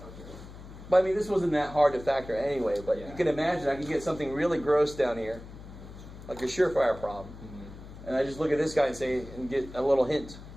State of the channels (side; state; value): left; noise; hum, 15 dB below the sound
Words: But I mean, this wasn't that hard to factor anyway, but you can imagine I can get something really gross down here, like a surefire problem. Mm-hmm. And I just look at this guy and say, and get a little hint.